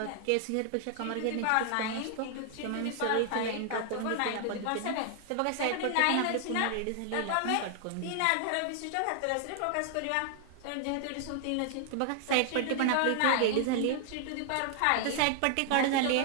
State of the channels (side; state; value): both; different; correlation 0.00